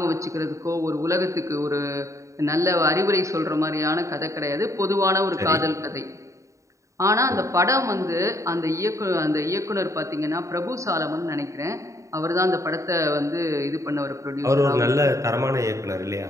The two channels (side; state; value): left; late; 0.15 ms